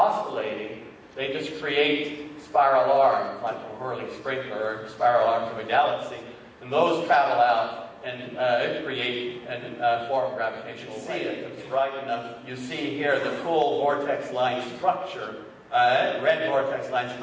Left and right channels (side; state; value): both; identical; correlation 1.00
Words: they just create spiral arms like a whirling sprinkler or spiral arms of a galaxy. And those travel out and create and form gravitational waves. If it's bright enough, you see here the full vortex line structure. Red vortex lines